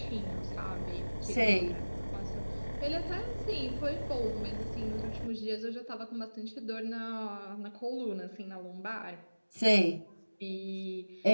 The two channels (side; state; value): both; inverted; correlation -1.00